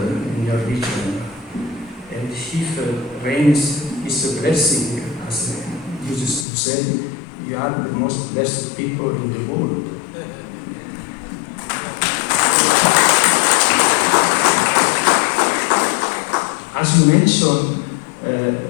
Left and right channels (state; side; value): drops out; right; at 6.5 s